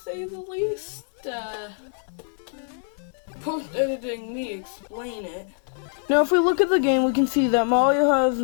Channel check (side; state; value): right; silent; digital silence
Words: say the least. Post-editing me explain it. Now, if we look at the game, we can see that Mario has